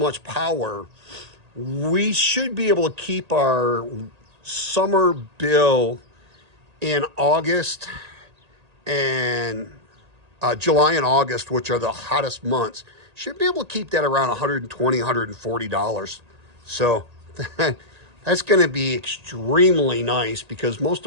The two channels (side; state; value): left; late; 1.8 ms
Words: power, we should be able to keep our summer bill in August and July and August, which are the hottest months, should be able to keep that around $120, $140. So that's going to be extremely nice, because most